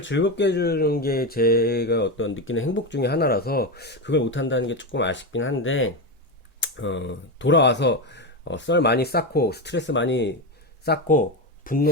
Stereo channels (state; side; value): normal; both; correlation 0.14